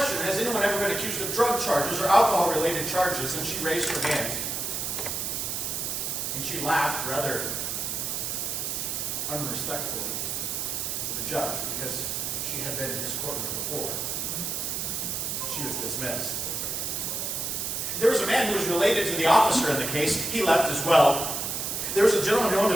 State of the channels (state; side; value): noise; right; hiss, 2 dB below the sound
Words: has anyone ever been accused of drug charges or alcohol-related charges? And she raised her hand. And she laughed rather unrespectfully to the judge because she had been in his courtroom before. She was dismissed. There was a man who was related to the officer in the case. He left as well. There was a gentleman who